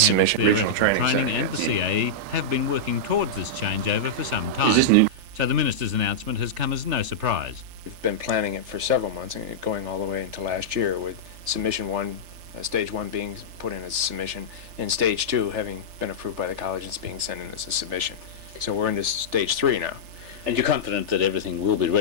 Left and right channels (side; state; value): left; late; 3.4 ms